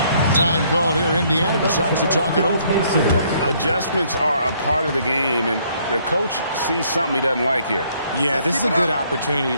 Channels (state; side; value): inverted; both; correlation -0.66